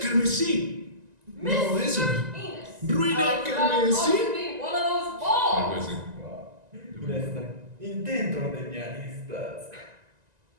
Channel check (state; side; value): late; left; 1.9 ms